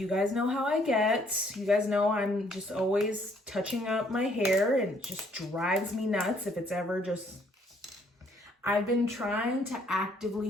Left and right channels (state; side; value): normal; both; correlation 0.65